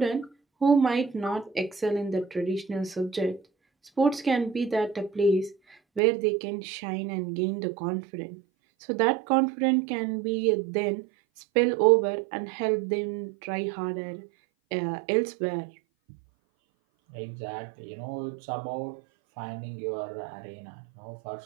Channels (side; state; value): left; drops out; at 6.0 s